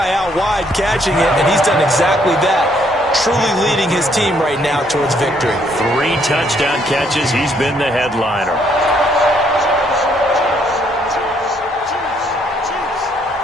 out wide catching it, and he's done exactly that. Truly leading his team right now towards victory. 3 touchdown catches. He's been the headliner.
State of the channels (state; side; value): normal; both; correlation 0.69